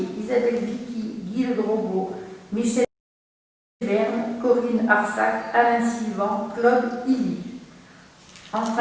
Isabelle Vicky, Guy Le Drogo, Michel Berne, Corinne Arsac, Alain Sivan, Claude Illy.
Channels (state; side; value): identical; both; correlation 1.00